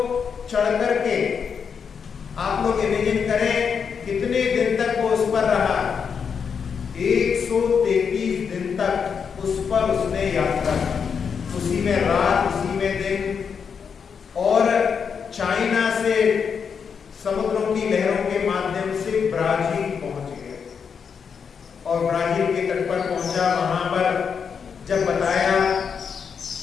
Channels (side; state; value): right; quieter; 6.5 dB